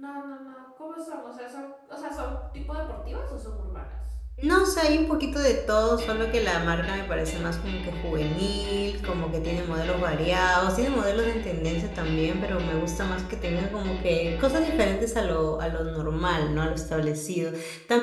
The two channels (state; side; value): identical; both; correlation 1.00